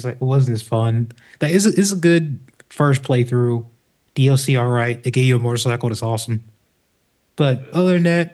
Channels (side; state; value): both; identical; correlation 1.00